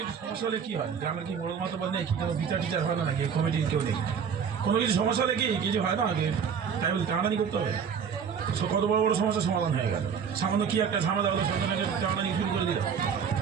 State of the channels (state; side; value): quieter; left; 6.9 dB